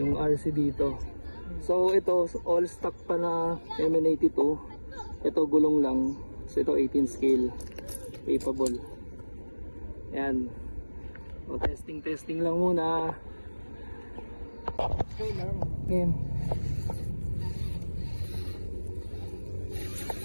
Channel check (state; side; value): inverted; both; correlation -1.00